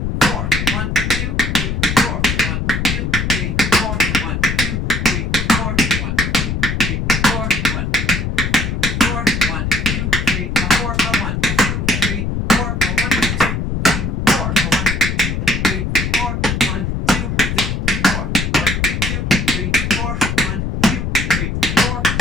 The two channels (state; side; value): noise; left; rumble, 1 dB below the sound